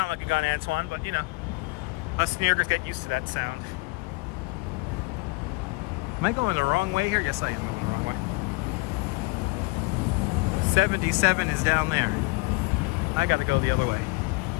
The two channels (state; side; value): quieter; right; 26.9 dB